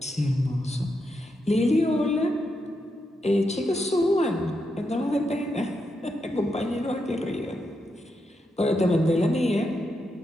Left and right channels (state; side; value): normal; both; correlation 0.84